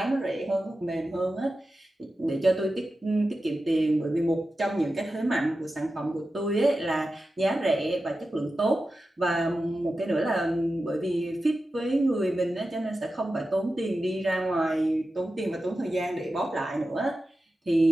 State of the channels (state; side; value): normal; both; correlation 0.92